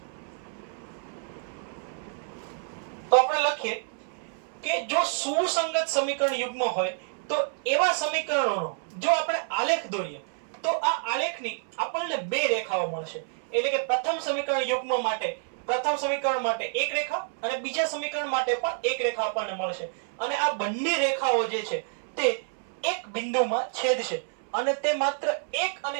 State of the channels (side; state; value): left; silent; 59 dB below the other